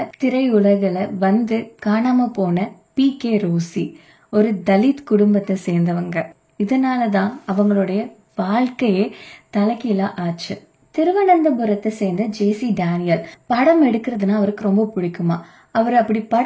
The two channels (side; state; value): both; identical; correlation 1.00